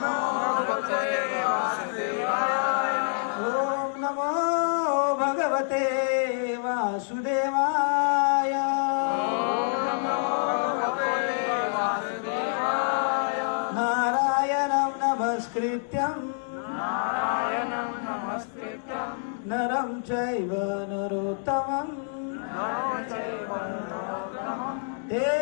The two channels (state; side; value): silent; right; digital silence